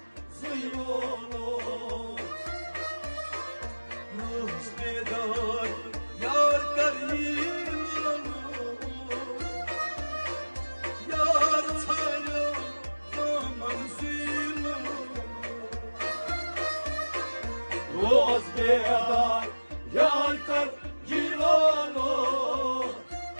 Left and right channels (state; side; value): inverted; both; correlation -1.00